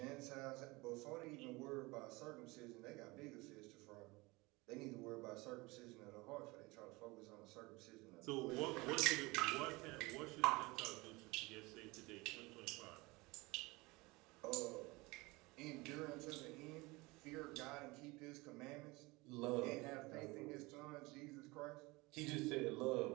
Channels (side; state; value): left; quieter; 23.4 dB